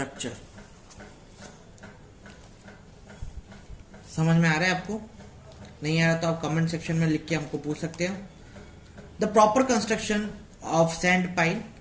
समझ में आ रहा है आपको? नहीं आ रहा तो आप कमेंट सेक्शन में लिख के हमको पूछ सकते हो। The proper construction of sand pile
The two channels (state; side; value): identical; both; correlation 1.00